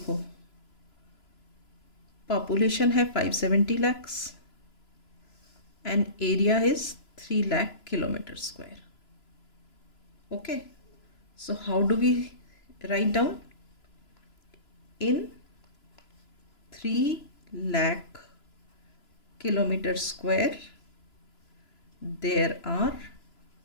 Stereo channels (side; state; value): right; late; 3.0 ms